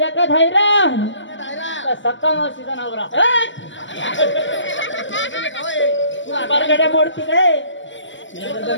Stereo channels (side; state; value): right; late; 0.54 ms